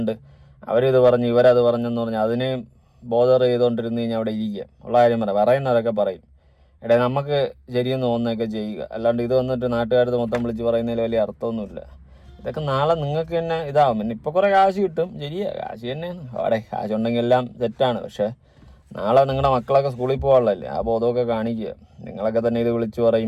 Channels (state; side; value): identical; both; correlation 1.00